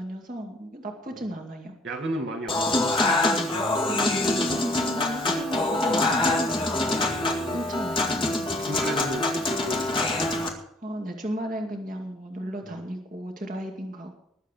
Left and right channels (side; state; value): both; normal; correlation 0.59